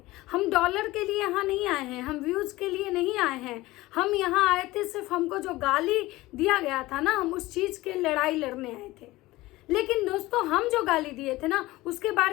हम डॉलर के लिए यहाँ नहीं आए हैं, हम व्यूज़ के लिए नहीं आए हैं। हम यहाँ आए थे सिर्फ हमको जो गाली दिया गया था ना, हम उस चीज़ के लड़ाई लड़ने आए थे। लेकिन दोस्तों, हम जो गाली दिए थे ना उसके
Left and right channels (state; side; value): quieter; right; 18.8 dB